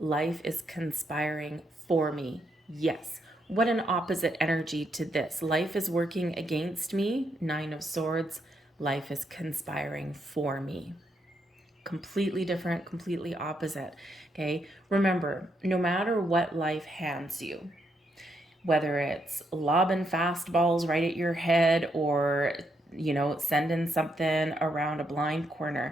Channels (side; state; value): both; normal; correlation 0.78